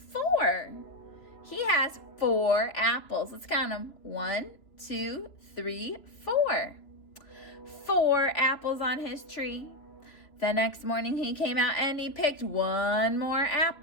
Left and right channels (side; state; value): right; late; 3.0 ms